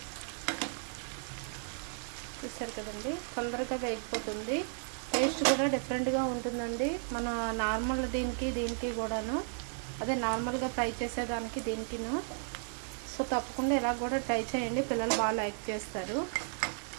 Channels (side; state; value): left; silent; 55 dB below the other